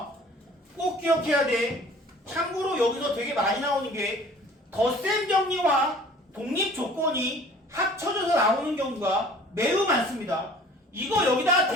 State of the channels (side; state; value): both; normal; correlation 0.49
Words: 꼭 기억해야 돼. 참고로 여기서 되게 많이 나오는 게 덧셈 정리와 독립 조건이 합쳐져서 나오는 경우가 매우 많습니다. 이거 여기다가